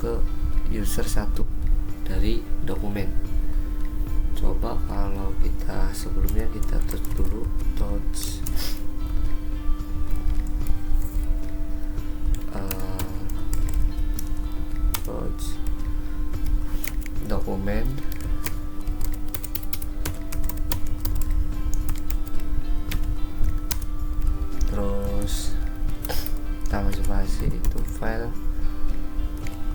user 1 dari dokumen. Coba kalau kita sebelumnya kita touch dulu, touch dokumen, terus tambah spasi itu file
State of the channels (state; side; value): identical; both; correlation 1.00